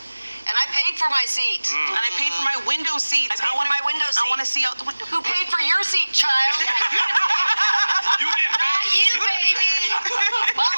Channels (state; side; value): inverted; both; correlation -1.00